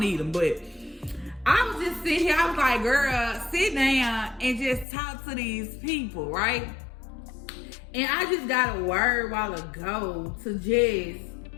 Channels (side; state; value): right; drops out; at 4.9 s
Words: them, but I was just sitting here. I was like, girl, sit down and just talk to these people, right? And I just got a word a while ago to just